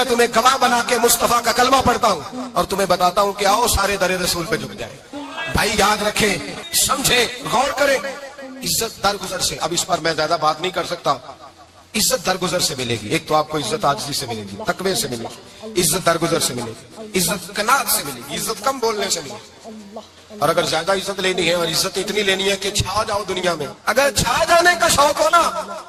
تمہیں گواہ بنا کے مصطفیٰ کا کلمہ پڑھتا ہوں اور تمہیں بتاتا ہوں کہ آؤ سارے در رسول پہ جھک جائیں. بھائی یاد رکھیں, سمجھیں, غور کریں. عزت درگزر سے, اب اس پر میں زیادہ بات نہیں کر سکتا. عزت درگزر سے ملے گی. ایک تو آپ کو عزت عاجزی سے ملے گی, تقوی سے ملے گی, عزت درگزر سے ملے گی, عزت قناعت سے ملے گی, عزت کم بولنے سے ملے گی. اور اگر زیادہ عزت لینی ہے اور عزت اتنی لینی ہے کہ چھا جاؤ دنیا میں, اگر چھا جانے کا شوق ہو نا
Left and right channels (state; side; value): identical; both; correlation 1.00